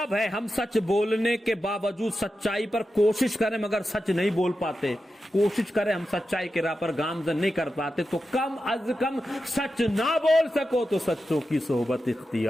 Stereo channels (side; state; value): both; normal; correlation 0.90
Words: ہے؟ ہم سچ بولنے کے باوجود سچائی پر کوشش کریں مگر سچ نہیں بول پاتے, کوشش کریں ہم سچائی کے راہ پر گامزن نہیں کر پاتے, تو کم از کم سچ نہ بول سکو تو سچوں کی صحبت